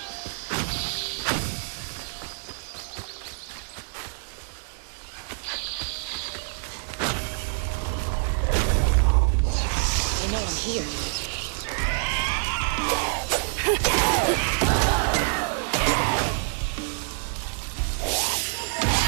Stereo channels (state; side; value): silent; left; 61 dB below the other